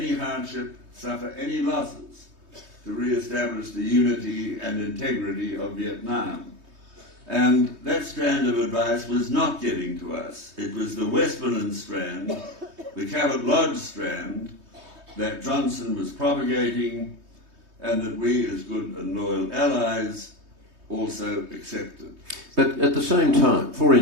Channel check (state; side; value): late; left; 3.2 ms